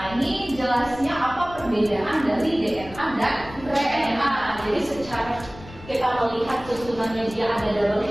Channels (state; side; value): noise; left; rumble, 17 dB below the sound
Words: Nah, ini jelasnya apa perbedaan dari DNA dan RNA. Jadi secara kita melihat susunannya dia ada double